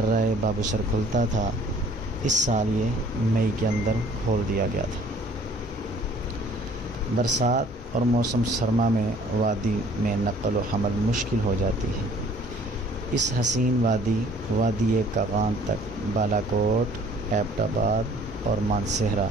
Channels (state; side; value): normal; both; correlation 0.55